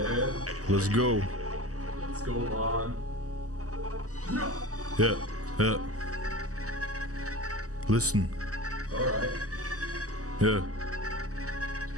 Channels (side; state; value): left; late; 0.66 ms